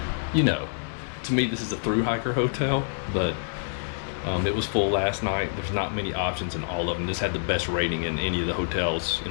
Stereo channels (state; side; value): silent; right; 60 dB below the other